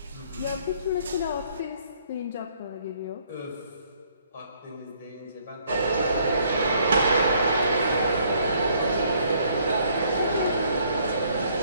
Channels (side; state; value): both; inverted; correlation -0.65